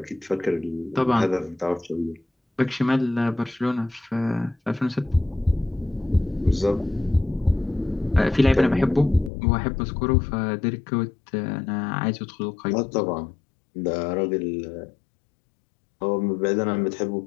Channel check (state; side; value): drops out; right; at 9.3 s